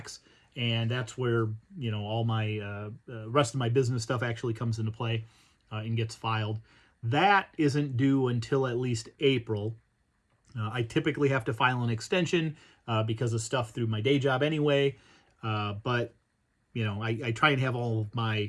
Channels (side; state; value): both; identical; correlation 1.00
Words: and that's where all my rest of my business stuff actually comes into play and gets filed. That isn't due until at least April. I typically have to file an extension because of stuff through my day job anyway, but I try and have all of